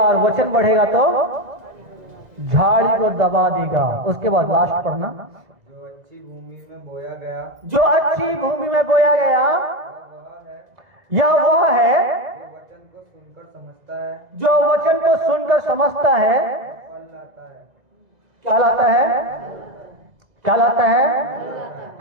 और वचन बढ़ेगा तो झाड़ी को दबा देगा। उसके बाद लास्ट पढ़ना, जो अच्छी भूमि में बोया गया, जो अच्छी भूमि में बोया गया यह वह है जो वचन को सुनकर समझता है, जो वचन को सुनकर समझता है। फल लाता है। क्या लाता है? क्या लाता है?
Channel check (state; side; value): late; left; 2.0 ms